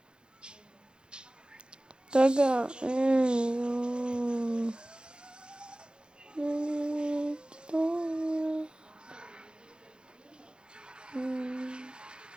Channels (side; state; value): left; late; 0.050 ms